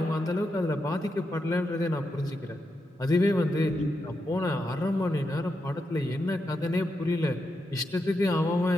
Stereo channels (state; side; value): normal; both; correlation 0.85